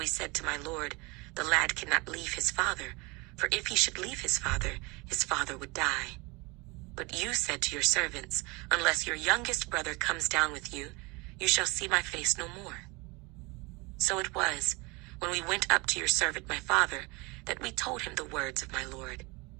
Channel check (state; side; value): quieter; left; 26.3 dB